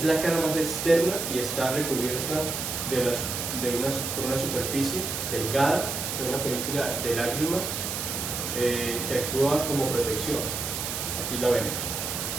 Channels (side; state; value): right; noise; hiss, 3 dB below the sound